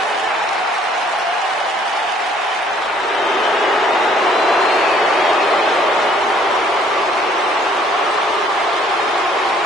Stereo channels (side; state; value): both; normal; correlation 0.61